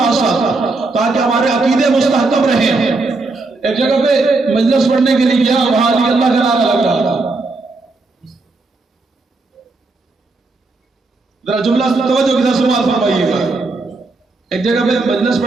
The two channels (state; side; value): quieter; left; 3.5 dB